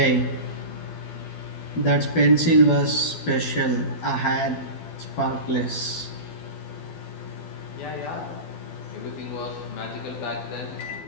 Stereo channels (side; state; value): right; late; 12 ms